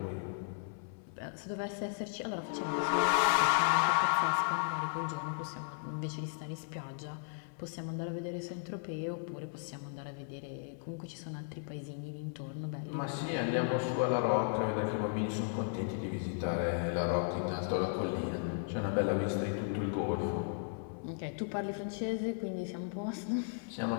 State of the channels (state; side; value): silent; right; 54 dB below the other